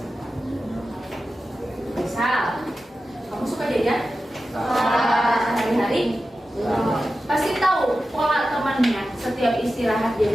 Misal, kamu suka jajan? Hari-hari? Pasti tahu pola temannya setiap istirahat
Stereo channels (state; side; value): normal; both; correlation 0.93